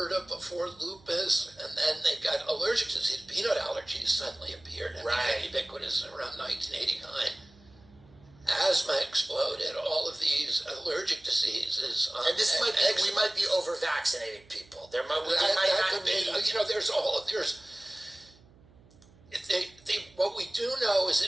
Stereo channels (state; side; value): noise; right; hum, 27 dB below the sound